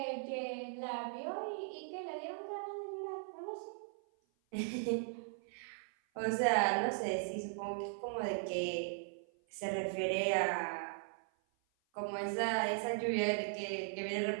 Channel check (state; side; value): silent; left; 52 dB below the other